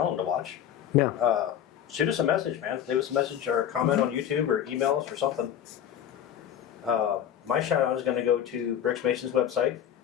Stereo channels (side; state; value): right; quieter; 10.0 dB